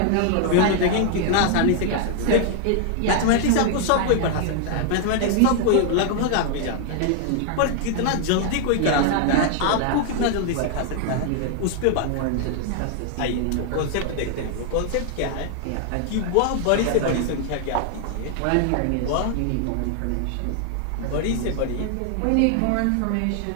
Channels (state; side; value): different; both; correlation 0.00